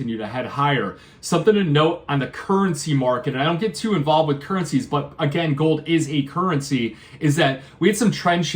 to head higher. Something to note on the currency market, and I don't get too involved with currencies, but again, gold is a currency, is that we had some trend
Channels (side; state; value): both; identical; correlation 1.00